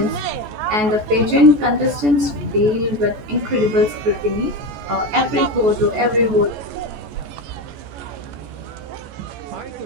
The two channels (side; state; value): left; late; 14 ms